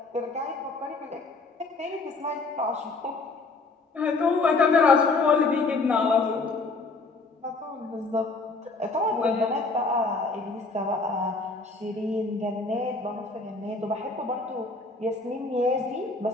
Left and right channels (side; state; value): right; quieter; 3.7 dB